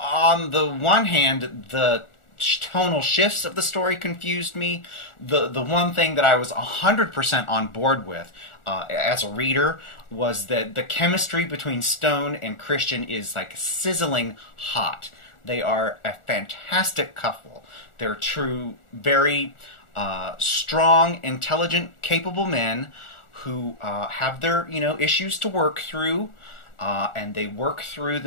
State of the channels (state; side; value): late; right; 1.4 ms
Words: the one hand, the tonal shifts of the story confused me. The one thing that I was 100% on board with as a reader was that the chemistry between Stone and Christian is like sizzling hot. They are a fantastic couple. They're true, very strong, intelligent, capable men who have their issues to work through, and they work through